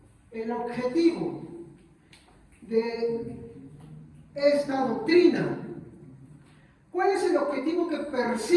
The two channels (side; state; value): both; identical; correlation 1.00